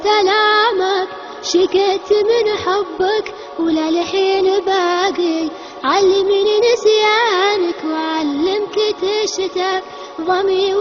الامك شقيت من حبك ولا لحين باقي علمني نسيانك وعلمك تشتاق ضمي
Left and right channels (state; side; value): identical; both; correlation 1.00